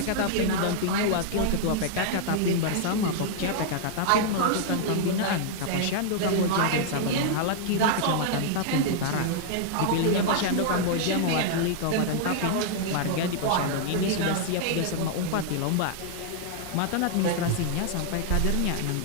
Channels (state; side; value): different; both; correlation -0.01